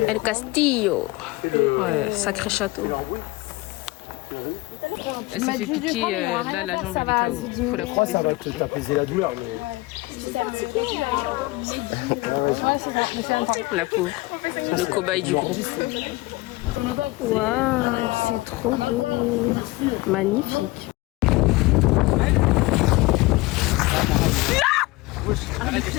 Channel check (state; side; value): quieter; right; 21.5 dB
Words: El Castillo. Ouais, sacré château. Elle s'est fait piquer, là la jambe elle est KO. Faut la couper. Ça va peut-être apaiser la douleur, mais. La pauvre. Le cobaye du groupe. Waouh, c'est trop beau. Magnifique.